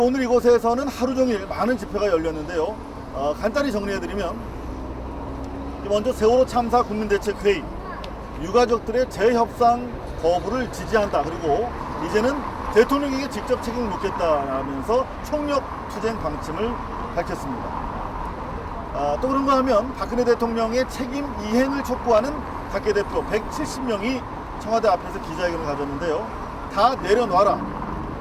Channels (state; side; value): identical; both; correlation 1.00